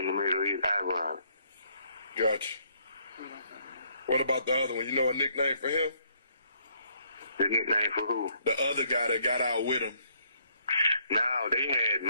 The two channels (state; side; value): inverted; both; correlation -0.69